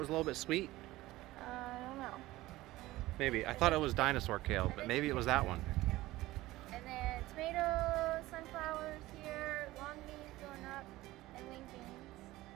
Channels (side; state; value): left; quieter; 17.7 dB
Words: a little bit sweet? I don't know. Maybe. I thought it was Dinosaur Kale, but maybe it was that one. And then tomatoes, sunflowers here, long beans going up, and wing beans,